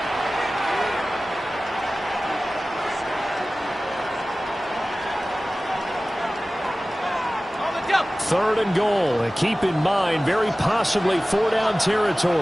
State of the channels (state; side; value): normal; both; correlation 0.97